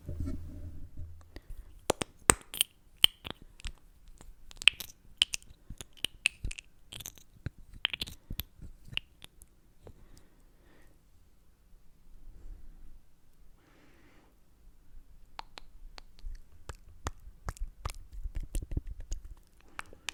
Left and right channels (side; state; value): both; identical; correlation 1.00